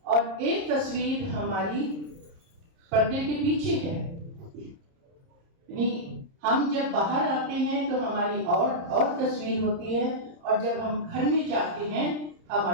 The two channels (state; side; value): late; left; 30 ms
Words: और एक तस्वीर हमारी पर्दे के पीछे है। हम जब बाहर आते हैं तो हमारी और तस्वीर होती है, और जब हम घर में जाते हैं